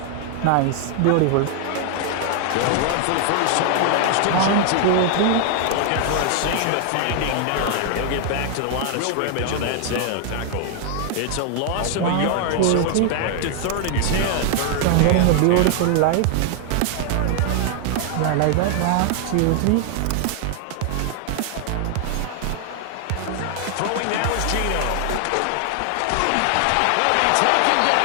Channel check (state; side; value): different; both; correlation 0.00